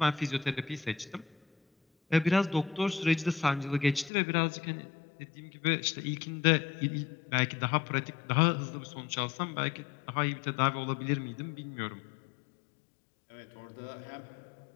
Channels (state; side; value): drops out; right; at 4.1 s